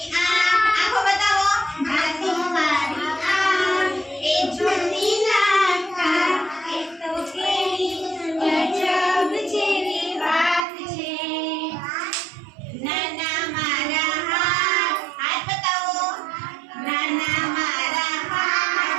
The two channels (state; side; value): drops out; left; at 10.7 s